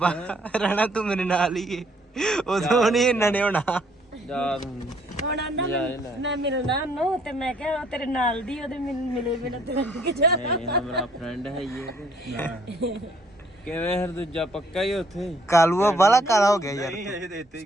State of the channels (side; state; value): both; normal; correlation 0.64